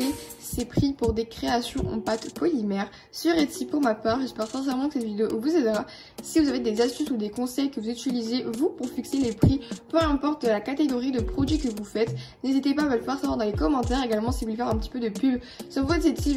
ses prix pour des créations en pâte polymère sur Etsy pour ma part. J'espère sincèrement que cette vidéo vous aidera. Si vous avez des astuces ou des conseils que vous utilisez vous pour fixer les prix, peu importe la catégorie de produits que vous faites, n'hésitez pas à me le faire savoir dans les commentaires. Également, si vous voulez faire un petit peu de pub sur votre Etsy,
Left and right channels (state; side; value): identical; both; correlation 1.00